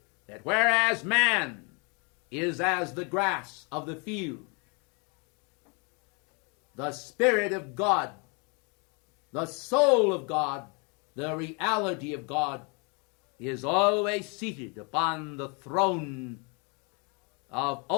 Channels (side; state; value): right; quieter; 33.3 dB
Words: that whereas man is as the grass of the field, the Spirit of God, the soul of God, the reality of God, is always seated upon the throne of